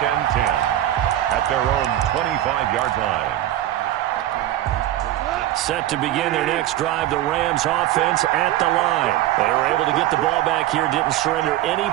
and 10 at their own 25-yard line. Set to begin their next drive, the Rams offense at the line. They were able to get the ball back here, didn't surrender any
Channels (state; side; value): quieter; left; 13.7 dB